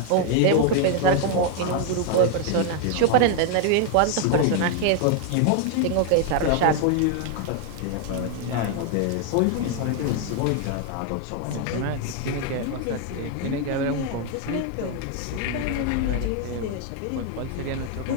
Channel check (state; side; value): different; both; correlation 0.00